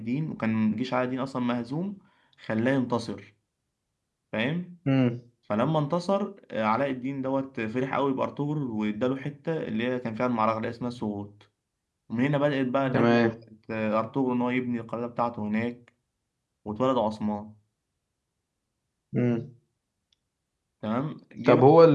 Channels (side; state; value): both; identical; correlation 1.00